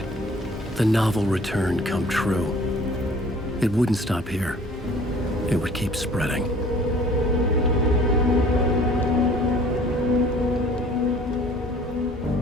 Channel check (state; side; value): normal; both; correlation 0.51